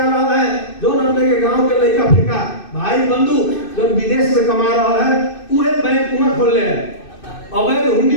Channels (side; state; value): right; late; 2.6 ms